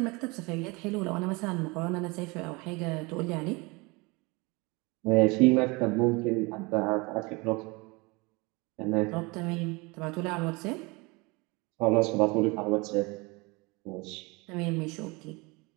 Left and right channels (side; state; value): left; quieter; 26.2 dB